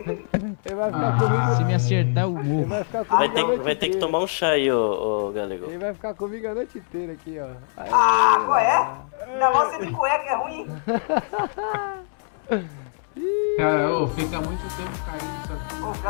vai ficar comigo. Se me acertar, eu morro. Ele vai ficar comigo a noite Vai ter que inteira. tomar um chá aí, ô Galego. Ele vai ficar comigo a noite inteira aqui, ó. Aí, Ah, qual é? Ainda mais você de cueca, é ruim. Cara, ô, fica muito tempo caído isso aqui. Pô, o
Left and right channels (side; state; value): right; silent; digital silence